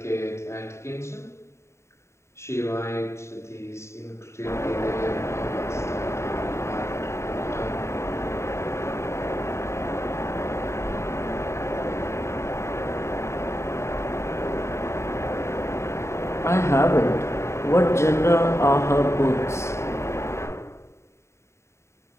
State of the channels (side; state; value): right; late; 0.13 ms